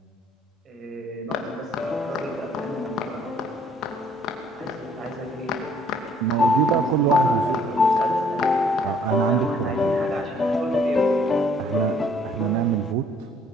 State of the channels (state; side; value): normal; both; correlation 0.61